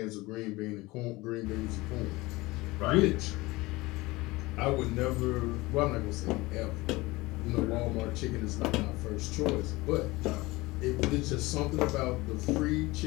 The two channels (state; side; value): quieter; right; 21.3 dB